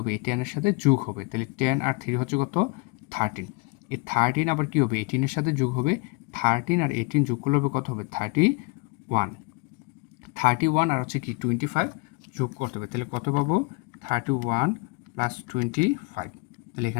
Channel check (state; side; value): quieter; right; 28.4 dB